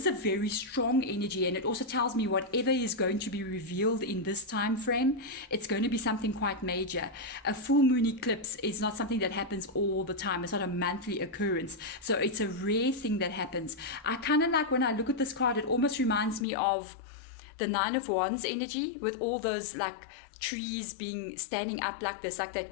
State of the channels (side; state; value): right; drops out; at 16.4 s